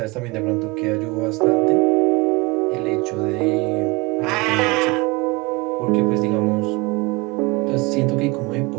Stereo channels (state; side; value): quieter; left; 25.5 dB